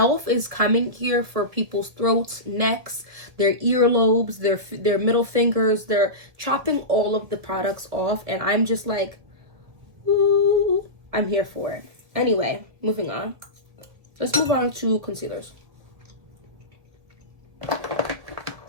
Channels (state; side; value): late; left; 1.9 ms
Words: is coming here for people's throats, necks, their earlobes, their middle fingers. They're chopping all of the products off, and I'm just like, ooh, I'm here for it. Anyway, moving on. Let's move on to concealers.